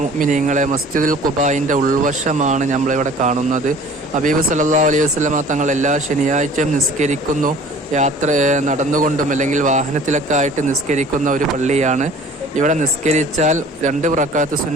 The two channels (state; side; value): normal; both; correlation 0.48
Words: മുഅ്മിനീങ്ങളെ, മസ്ജിദുൽ ഖുബായിൻ്റെ ഉൾവശമാണ് നമ്മളിവിടെ കാണുന്നത്. ഹബീബ് സല്ലല്ലാഹു അലൈഹി വസല്ലമ തങ്ങൾ എല്ലാ ശനിയാഴ്ചയും നിസ്കരിക്കുന്നു. നടന്നുകൊണ്ടും അല്ലെങ്കിൽ വാഹനത്തിലൊക്കെ ആയിട്ട് നിസ്കരിക്കുന്ന ഒരു പള്ളിയാണ്. ഇവിടെ നിസ്കരിച്ചാൽ 2 റക്അത്ത്